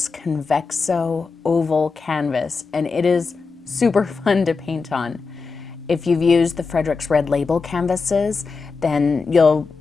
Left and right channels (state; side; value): quieter; right; 4.6 dB